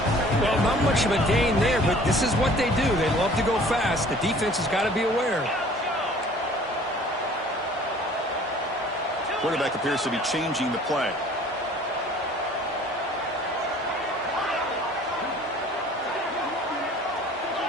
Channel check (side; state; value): both; normal; correlation 0.51